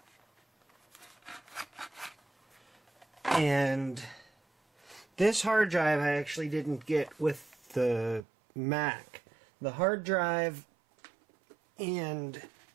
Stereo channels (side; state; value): left; drops out; at 8.2 s